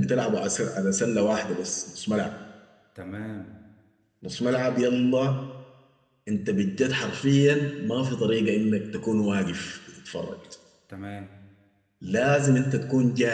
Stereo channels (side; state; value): both; identical; correlation 1.00